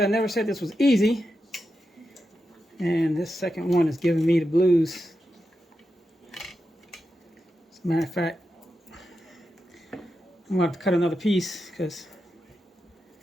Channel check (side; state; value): both; normal; correlation 0.88